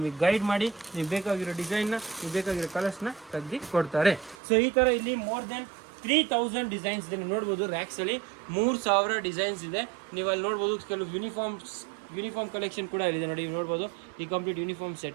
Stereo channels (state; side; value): drops out; left; at 4.4 s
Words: ಗೈಡ್ ಮಾಡಿ, ನೀವು ಬೇಕಾಗಿರೋ ಡಿಸೈನ್ನ, ನೀವು ಬೇಕಾಗಿರೋ ಕಲರ್ಸ್ನ ತೆಗ್ದು ಕೊಡ್ತಾರೆ. ಸೊ ಈ ಥರ ಇಲ್ಲಿ ಮೋರ್ ದೆನ್ 3000 ಡಿಸೈನ್ಸ್ ಇದೆ. ನೀವು ನೋಡ್ಬೋದು ರ್ಯಾಕ್ಸಲ್ಲಿ 3000 ಡಿಸೈನ್ಸ್ ಇದೆ. ನೀವು ಅಲ್ಲಿ ನೋಡ್ಬೋದು ಕೆಲವು ಯೂನಿಫಾರ್ಮ್ಸ್ ಯೂನಿಫಾರ್ಮ್ ಕಲೆಕ್ಷನ್ ಕೂಡ ಇದೆ ನೋಡಿ, ನೋಡ್ಬೋದು ಈ ಕಂಪ್ಲೀಟ್ ಯೂನಿಫಾರ್ಮ್